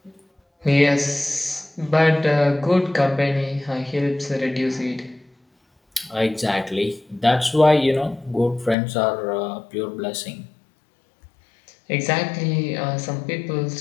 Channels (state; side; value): drops out; right; at 8.8 s